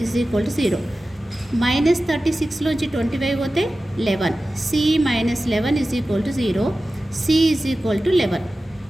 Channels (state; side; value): normal; both; correlation 0.95